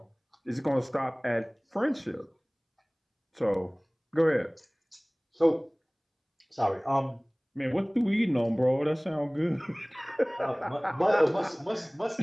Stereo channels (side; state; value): both; identical; correlation 1.00